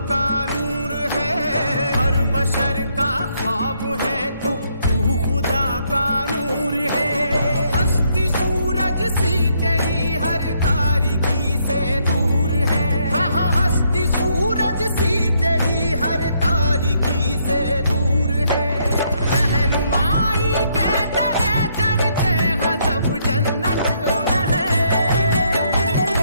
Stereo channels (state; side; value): inverted; both; correlation -0.73